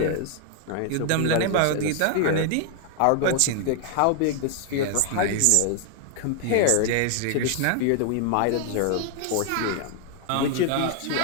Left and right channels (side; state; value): both; different; correlation 0.00